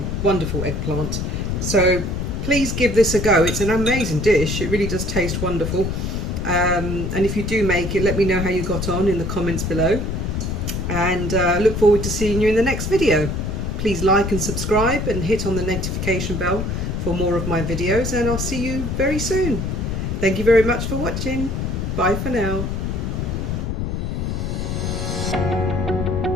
wonderful eggplant. So please give this a go. It's an amazing dish. It really does taste wonderful. And if you do make it, let me know how you got on in the comments below. And look forward to seeing you in the next video. Please like and subscribe and hit on the notification bell for more of my videos, and I'll see you very soon. Thank you very much for watching. Bye for now.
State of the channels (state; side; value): noise; left; rumble, 2 dB below the sound